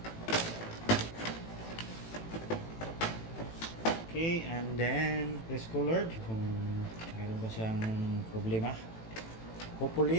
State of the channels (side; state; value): right; late; 18 ms